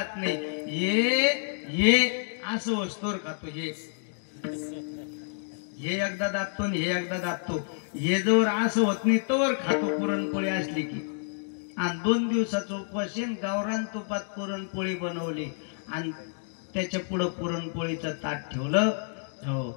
नाही, हे असं वस्तूवर खातो, हे एकदा दाबतो आणि हे एकदा दाबतो. हे जवळ असं होत नाही तवर खातो पुरणपोळी असली की. आणि 2 दिवसाचं उपवास गावरान तुपात पुरणपोळी बनवली आणि त्याच्या पुढं पुरणपोळीचं ताट ठेवलं. हो,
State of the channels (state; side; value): silent; right; digital silence